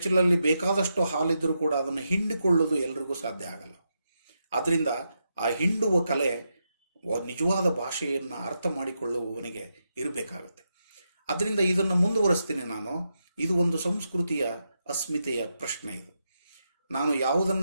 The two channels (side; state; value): both; inverted; correlation -0.85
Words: ಬೇಕಾದಷ್ಟು ಹಾಲಿದ್ರೂ ಕೂಡ ಅದನ್ನು ಹಿಂಡಿಕೊಳ್ಳೋದು ಎಲ್ರಿಗೂ ಸಾಧ್ಯ ಆಗಲ್ಲ. ಆದ್ದರಿಂದ ಆ ಹಿಂಡುವ ಕಲೆ ನಿಜವಾದ ಭಾಷೆಯನ್ನು ಅರ್ಥ ಮಾಡಿಕೊಳ್ಳುವವನಿಗೆ ಇರಬೇಕಾಗುತ್ತೆ. ಅದರಿಂದ ಇದನ್ನು ಮುಂದುವರಿಸ್ತೀನಿ ನಾನು. ಇದು ಒಂದು ಸಂಸ್ಕೃತಿಯ ಅಸ್ಮಿತೆಯ ಪ್ರಶ್ನೆ. ಇದು ನಾನು